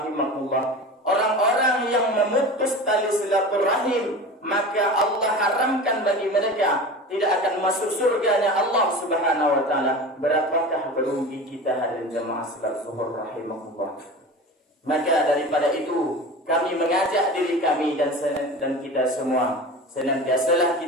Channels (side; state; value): both; normal; correlation 0.33